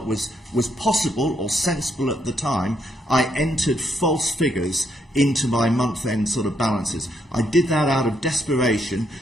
was possible or sensible at the time. I entered false figures into my month-end sort of balances. I did that out of desperation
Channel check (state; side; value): normal; both; correlation 0.76